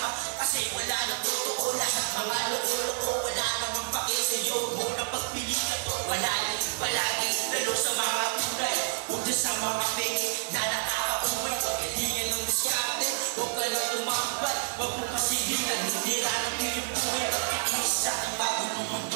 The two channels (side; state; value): left; silent; digital silence